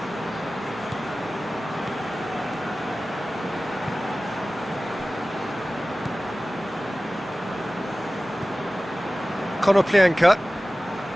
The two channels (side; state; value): both; normal; correlation 0.97